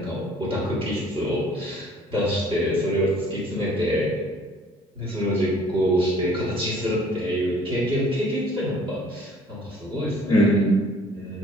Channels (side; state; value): both; normal; correlation 0.55